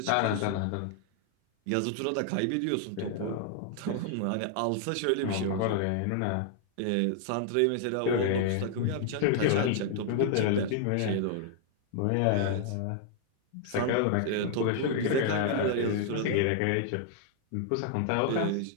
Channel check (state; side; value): different; both; correlation 0.00